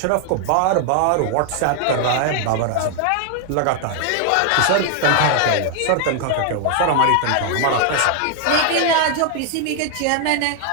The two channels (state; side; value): different; both; correlation 0.00